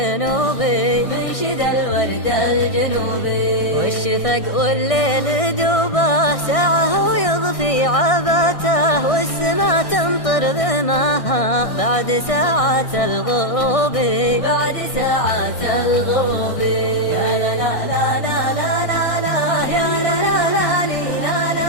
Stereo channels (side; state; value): right; late; 1.6 ms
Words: منشد الورد الجنوبي. والشفق والليل دوبه ساعه ويضفي عباته، والسما تمطر بماها بعد ساعات الغروب. بعد ساعات الغروب. يا لا لا لا لا لا لا لا يا لا لا لا لي لا